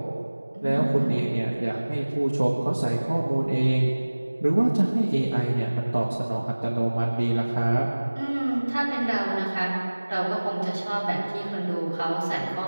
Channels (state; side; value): inverted; both; correlation -1.00